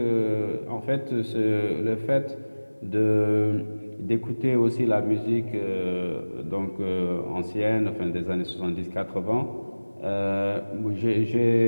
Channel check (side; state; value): both; inverted; correlation -1.00